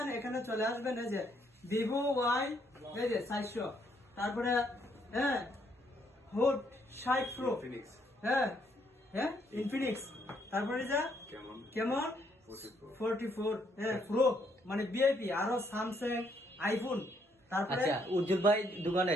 এখানে চলে আসবেন। এই যে ভিভো ওয়াই, এই যে 400, তারপরে হ্যাঁ হোট 60 প্রো, হ্যাঁ হ্যাঁ ইনফিনিক্স, তারপরে যে কেমন 44 হ্যাঁ প্রো মানে ভিআইপি, আরো স্যামসাং, আইফোন। তারপরে আচ্ছা, উজ্জ্বল ভাই দোকানে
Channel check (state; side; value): normal; both; correlation 0.71